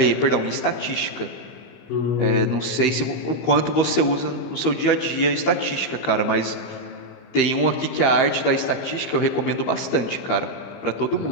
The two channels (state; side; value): late; right; 15 ms